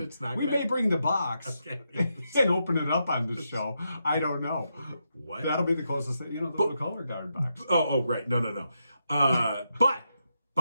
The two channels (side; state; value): both; inverted; correlation -0.83